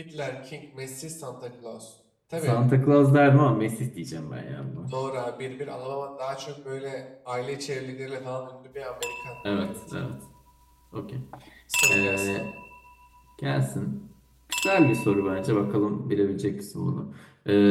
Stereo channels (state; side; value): identical; both; correlation 1.00